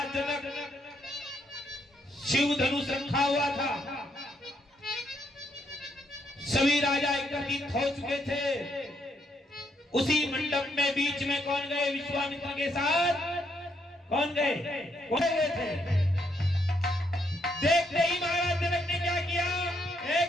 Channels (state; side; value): normal; both; correlation 0.74